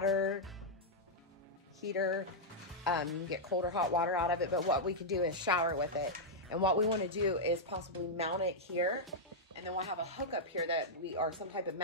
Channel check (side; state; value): both; normal; correlation -0.05